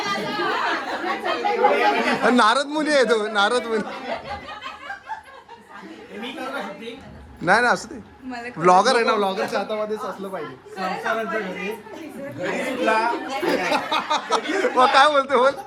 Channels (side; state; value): both; identical; correlation 1.00